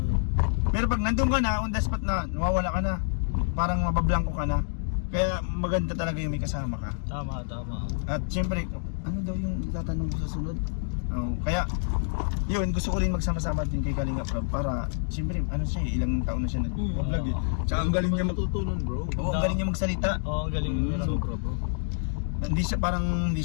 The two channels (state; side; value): silent; right; digital silence